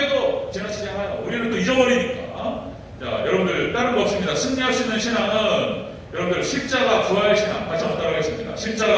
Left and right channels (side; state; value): both; identical; correlation 1.00